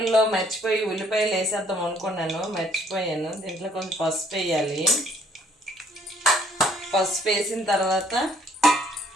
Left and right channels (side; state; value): both; normal; correlation 0.63